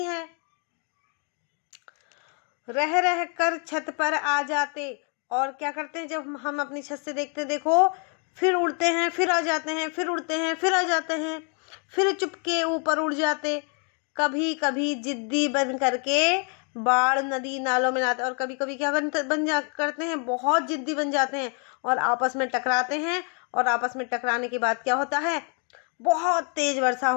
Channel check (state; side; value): quieter; right; 39.0 dB